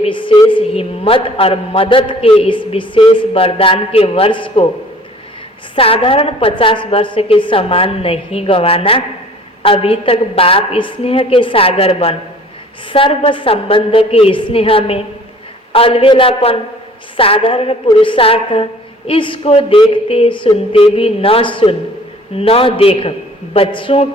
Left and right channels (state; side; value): normal; both; correlation 0.51